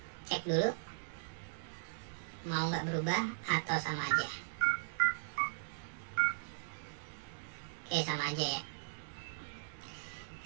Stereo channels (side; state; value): left; silent; digital silence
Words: cek dulu. Mau nggak berubah atau sama aja. Oke, sama aja ya.